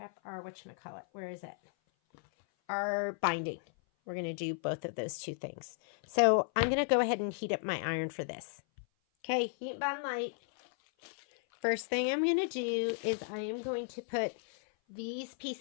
whatchamacallit, where is it? Our binding. We're going to do both of those 2 things. So I'm going to go ahead and heat up my iron for this. Okay, heat bond light. First thing I'm going to do is I am going to put these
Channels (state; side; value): silent; right; 55 dB below the other